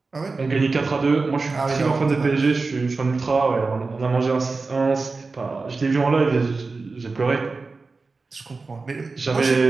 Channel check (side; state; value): left; quieter; 4.0 dB